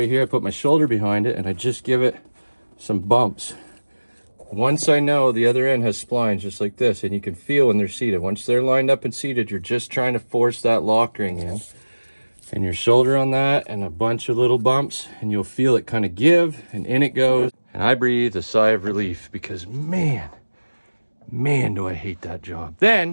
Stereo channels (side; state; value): both; inverted; correlation -1.00